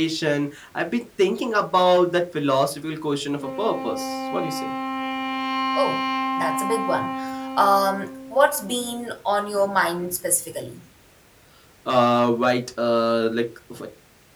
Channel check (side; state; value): both; identical; correlation 1.00